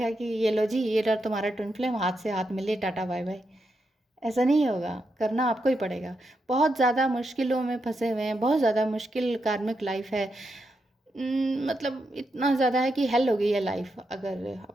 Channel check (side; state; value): both; normal; correlation 0.84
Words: कि ये लो जी, ये रहा तुम्हारा ट्विन फ्लेम, हाथ से हाथ मिले, टाटा बाय बाय। ऐसा नहीं होगा, करना आपको ही पड़ेगा। बहुत ज़्यादा मुश्किलों में फंसे हुए हैं, बहुत ज़्यादा मुश्किल कार्मिक लाइफ है। मतलब इतना ज़्यादा है कि हेल हो गई है लाइफ अगर